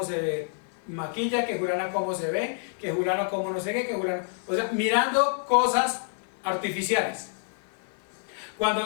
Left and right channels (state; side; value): silent; right; 60 dB below the other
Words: se maquilla, que Julana cómo se ve, que Julano cómo no sé qué, que Julano... O sea, mirando cosas artificiales.